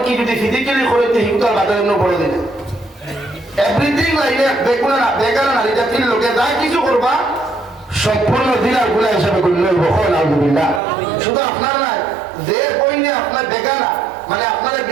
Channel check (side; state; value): left; drops out; at 10.8 s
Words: যদি ফিজিক্যালি করে হিংসার বাজার বলে দিলে এভরিথিং লাইনে বেগুনা না বেকার নারী জাতির লোকে যা কিছু করবা সম্পূর্ণ দিনার গুলা হিসাবে করলে আলহামদুলিল্লাহ শুধু আপনার নাই যে বইনে আপনার বেকানা মানে আপনার